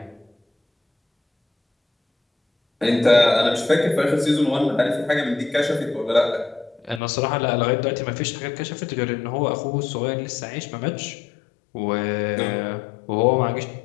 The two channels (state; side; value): drops out; right; at 7.0 s